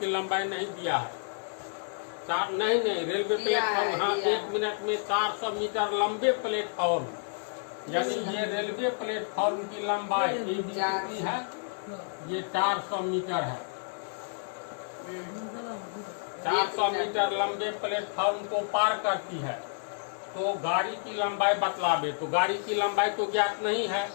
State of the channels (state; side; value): silent; right; digital silence